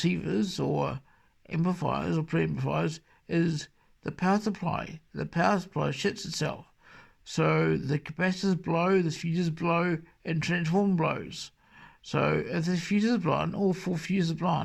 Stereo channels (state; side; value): identical; both; correlation 1.00